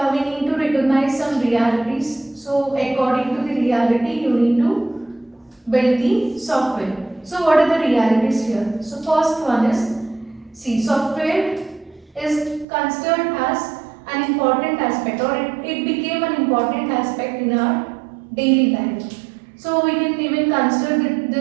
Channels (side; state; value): left; drops out; at 12.7 s